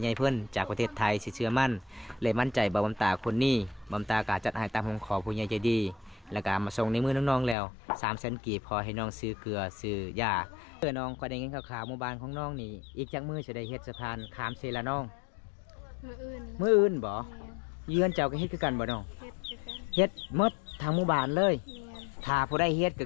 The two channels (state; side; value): drops out; right; at 7.6 s